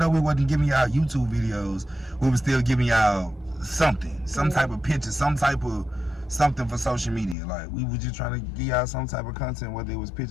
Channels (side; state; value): right; drops out; at 7.4 s